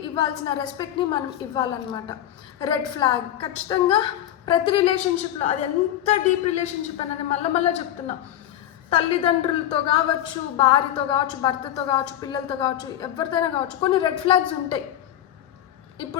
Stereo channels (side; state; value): right; quieter; 11.9 dB